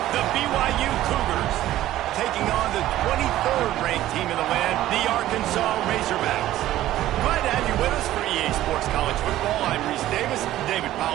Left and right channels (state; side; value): quieter; left; 14.2 dB